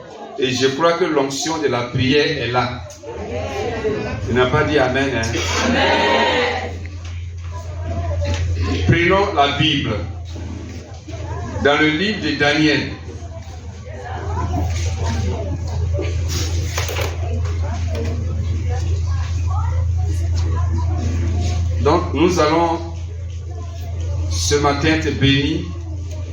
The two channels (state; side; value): identical; both; correlation 1.00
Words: Et je crois que l'onction de la prière est là. Tu n'as pas dit Amen, hein? Amen. Prenons la Bible. Dans le livre de Daniel. Donc, nous allons ce matin te bénir.